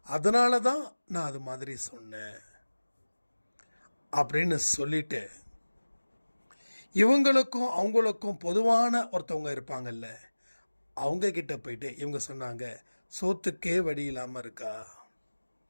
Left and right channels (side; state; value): both; inverted; correlation -1.00